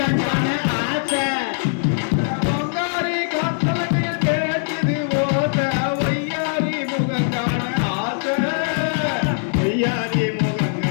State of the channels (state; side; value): silent; right; digital silence